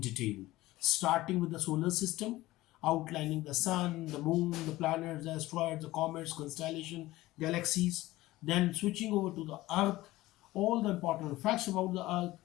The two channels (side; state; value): right; quieter; 17.7 dB